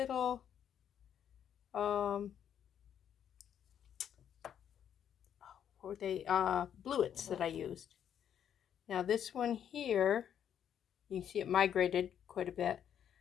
bluets that I used. Now this one here, you can see it migrated quite a bit.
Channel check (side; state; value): right; quieter; 9.2 dB